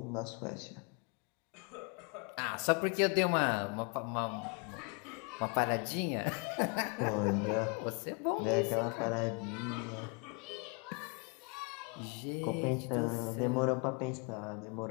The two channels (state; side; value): quieter; right; 34.0 dB